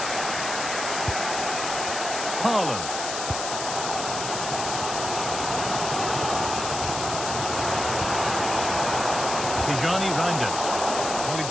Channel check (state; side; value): noise; left; hiss, 5 dB below the sound